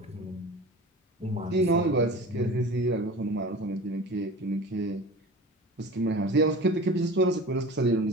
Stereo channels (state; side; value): normal; both; correlation 0.36